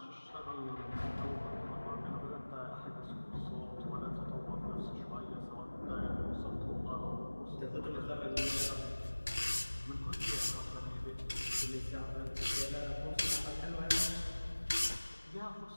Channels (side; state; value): both; inverted; correlation -1.00